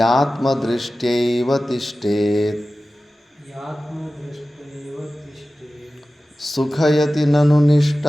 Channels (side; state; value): both; normal; correlation 0.96